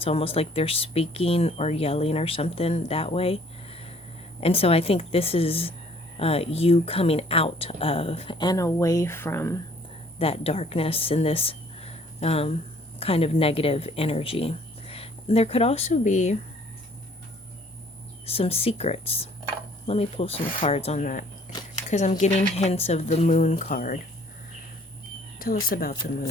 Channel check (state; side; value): normal; both; correlation 0.58